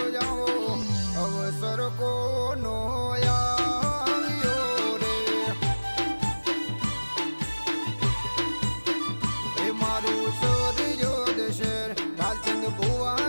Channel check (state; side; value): inverted; both; correlation -1.00